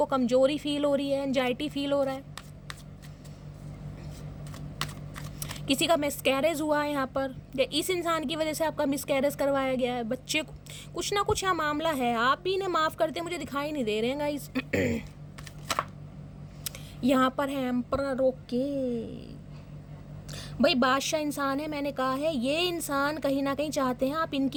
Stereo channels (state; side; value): identical; both; correlation 1.00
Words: कमजोरी फील हो रही है, एंजाइटी फील हो रहा है, किसी का मिसकैरेज हुआ है यहाँ पर, या इस इंसान की वजह से आपका मिसकैरेज करवाया गया है, बच्चे को कुछ ना कुछ यहाँ मामला है, आप भी इन्हें माफ़ करते मुझे दिखाई नहीं दे रहे हैं गाइस। यहाँ पर है एम्परर। ओके भाई बादशाह इंसान है, मैंने कहा है ये इंसान कहीं ना कहीं चाहते हैं आप